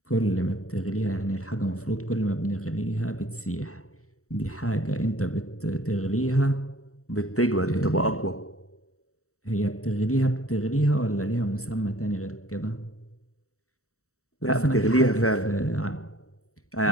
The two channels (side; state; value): right; late; 0.64 ms